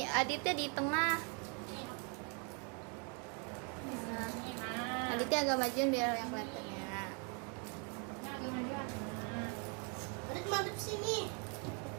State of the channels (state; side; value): quieter; left; 36.9 dB